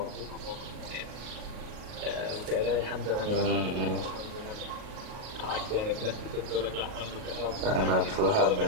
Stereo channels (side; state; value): left; late; 38 ms